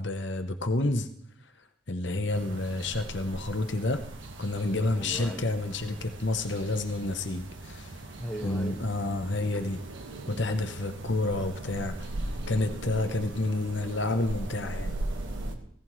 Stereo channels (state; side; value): normal; both; correlation 0.64